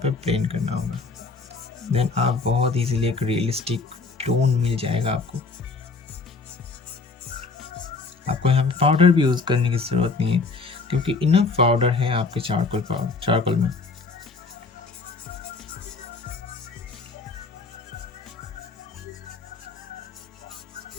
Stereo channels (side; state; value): right; quieter; 4.1 dB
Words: ब्लेंड करना होगा। देन आप बहुत इजीली एक रियलिस्टिक टोन मिल जाएगा आपको। आपको यहाँ पे पाउडर भी यूज़ करने की ज़रूरत नहीं है क्योंकि इनफ पाउडर है आपके चारकोल में।